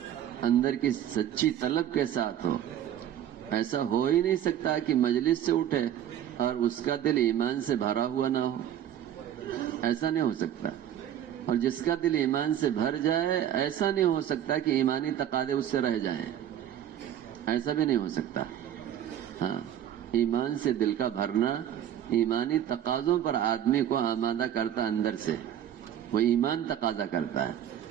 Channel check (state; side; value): quieter; left; 10.6 dB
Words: اندر کی سچی طلب کے ساتھ ہو. ایسا ہو ہی نہیں سکتا کہ مجلس سے اٹھے اور اس کا دل ایمان سے بھرا ہوا نہ ہو. ایسا نہیں ہو سکتا. اور جس کا دل ایمان سے بھر جائے ایسا نہیں ہو سکتا کہ ایمانی تقاضے اس سے رہ جائیں. ایسا بھی نہیں ہو سکتا. ہاں، ایمان سے دل کا بھرنا ایمانی تقاضوں پر آدمی کو آمادہ کرتا اندر سے. وہ ایمان تقاضا کرتا ہے.